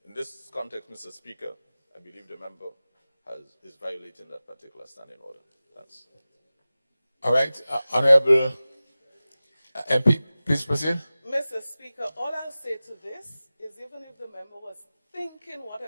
In this context, Mr. Speaker, I believe the member is violating that particular standing order. Thanks. All right, Honorable MP, please proceed. Mr. Speaker, all I'll say to this is even if the member was thinking what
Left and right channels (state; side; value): inverted; both; correlation -0.96